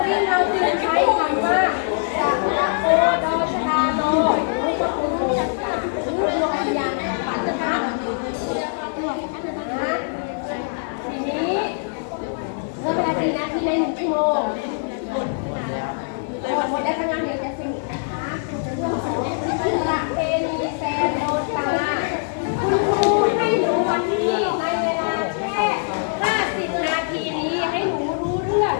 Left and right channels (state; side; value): silent; right; digital silence